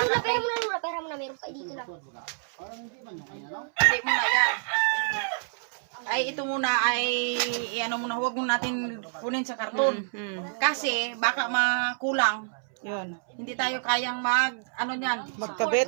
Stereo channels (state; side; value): silent; left; 59 dB below the other